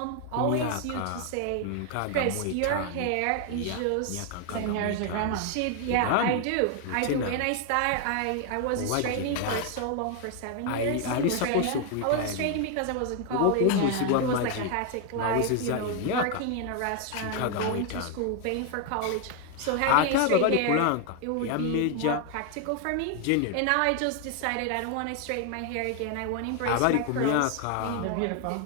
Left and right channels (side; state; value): both; different; correlation 0.01